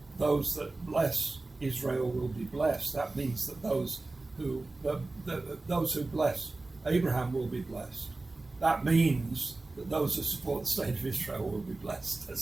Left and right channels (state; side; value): quieter; left; 3.2 dB